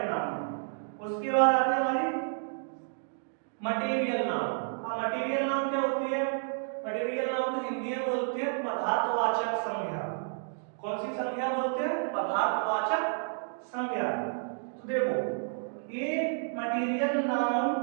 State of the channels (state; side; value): silent; left; digital silence